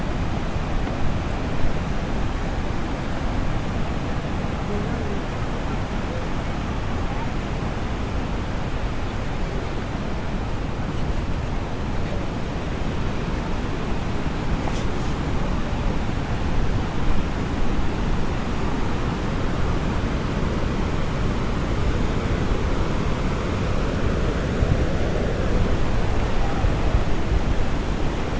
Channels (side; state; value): both; identical; correlation 1.00